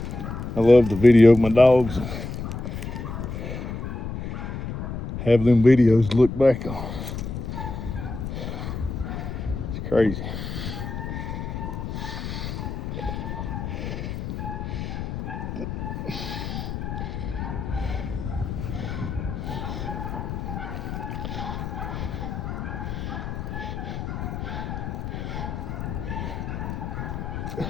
I love to video my dogs. Have them videos to look back on. It's crazy.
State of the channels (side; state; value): left; noise; rumble, 5 dB below the sound